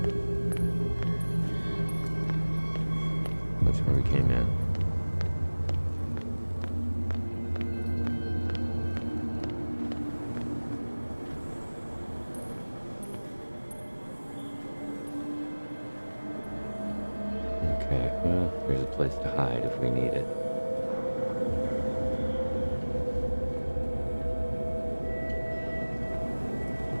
That's where we came in. Okay, well, there's a place to hide if we need it.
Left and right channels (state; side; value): inverted; both; correlation -1.00